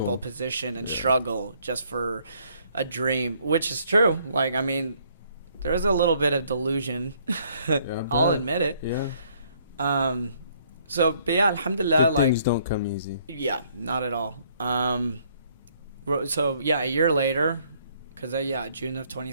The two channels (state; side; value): inverted; both; correlation -0.65